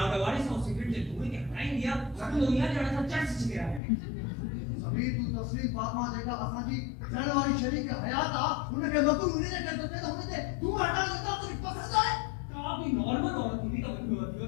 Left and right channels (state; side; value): drops out; right; at 3.8 s